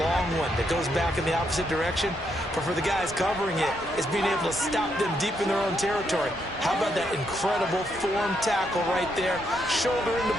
one that goes back in the opposite direction. But for the guys covering it, it's being able to stop them deep in their own territory. How about that incredible form tackle right there? Shoulder in the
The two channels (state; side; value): normal; both; correlation 0.77